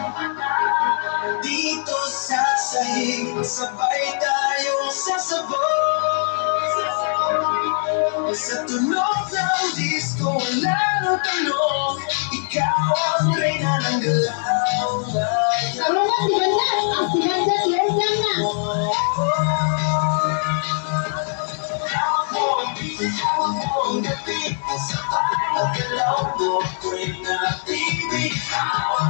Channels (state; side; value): silent; right; 62 dB below the other